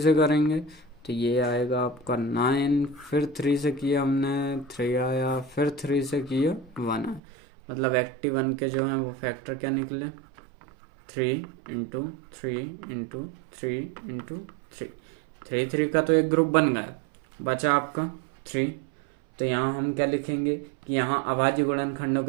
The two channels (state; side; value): drops out; left; at 7.2 s